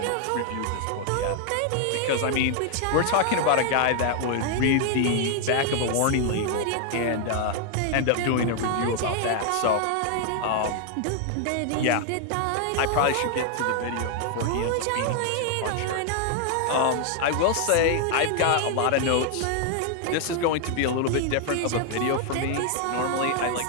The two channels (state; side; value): different; both; correlation 0.00